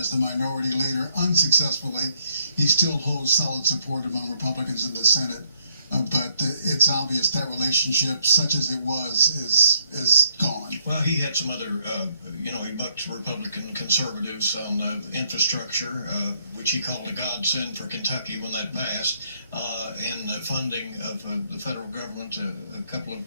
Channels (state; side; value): inverted; both; correlation -0.72